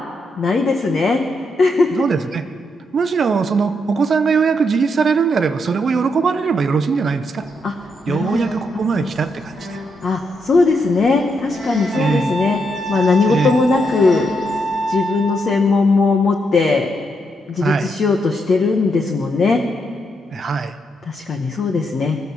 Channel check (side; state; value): both; normal; correlation 0.80